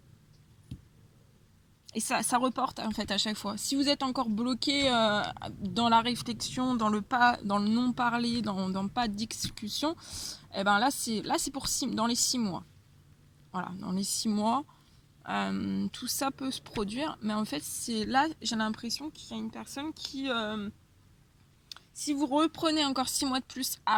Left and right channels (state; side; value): identical; both; correlation 1.00